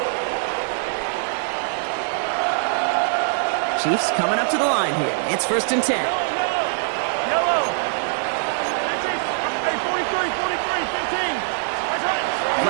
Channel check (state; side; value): silent; left; 64 dB below the other